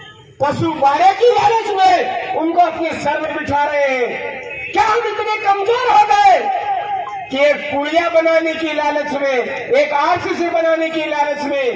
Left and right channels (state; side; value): identical; both; correlation 1.00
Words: पशु बाड़े की लालच में उनको अपने सर में बिठा रहे हैं? क्या हम इतने कमजोर हो गए कि एक पुलिया बनाने की लालच में, एक आरसीसी बनाने की लालच